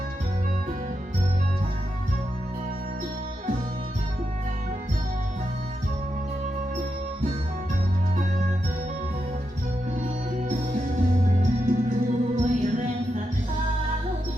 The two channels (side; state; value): both; normal; correlation 0.86